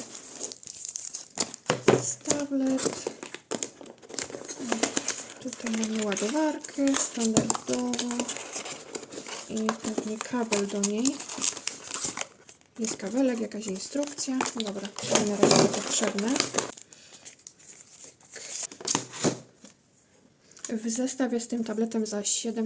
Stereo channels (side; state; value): both; identical; correlation 1.00